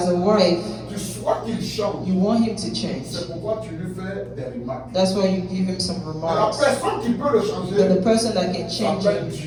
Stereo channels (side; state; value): both; identical; correlation 1.00